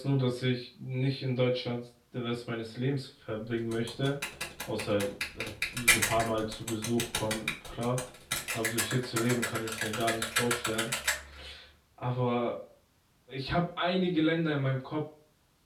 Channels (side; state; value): both; identical; correlation 1.00